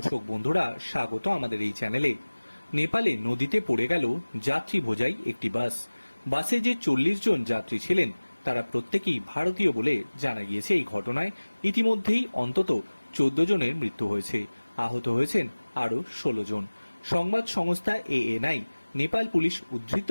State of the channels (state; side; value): inverted; both; correlation -1.00